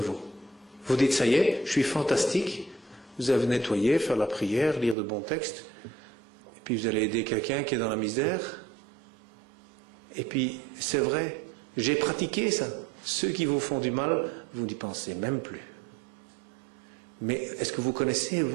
Vous dites, ça y est, je suis fantastique, vous avez nettoyé, faire la prière, lire de bons textes, et puis vous allez aider quelqu'un qui est dans la misère. Et puis, c'est vrai, j'ai pratiqué ça. Ceux qui vous font du mal, vous n'y pensez même plus. Mais est-ce que vous connaissez,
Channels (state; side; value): drops out; left; at 5.0 s